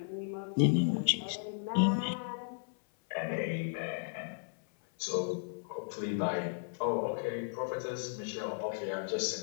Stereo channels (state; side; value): silent; right; 55 dB below the other